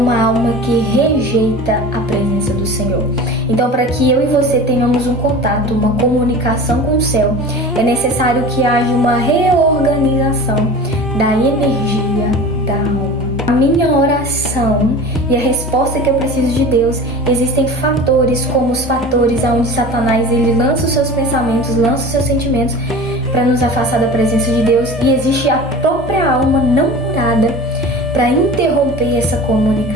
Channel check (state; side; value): normal; both; correlation 0.36